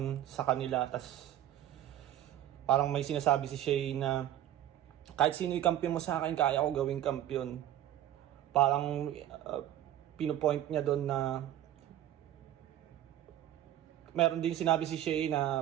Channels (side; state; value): left; quieter; 12.3 dB